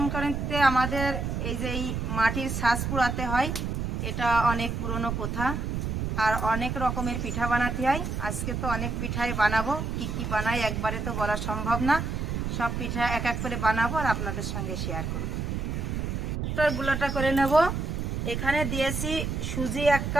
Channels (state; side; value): noise; right; rumble, 2 dB below the sound